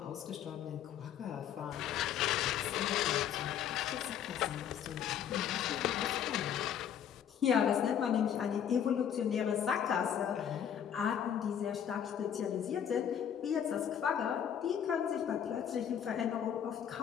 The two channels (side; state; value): right; quieter; 9.0 dB